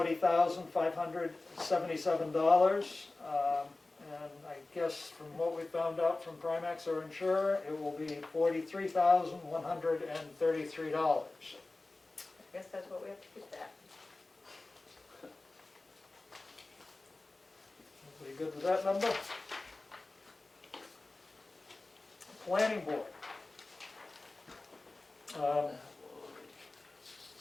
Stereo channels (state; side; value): quieter; right; 3.1 dB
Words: And I guess from what we found out from Primex, our insurer, it will be $43,133. I guess that's what we have to keep that. Everybody good with that number? Planning board.